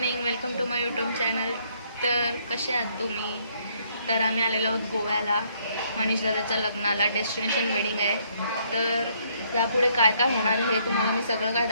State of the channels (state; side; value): inverted; both; correlation -0.68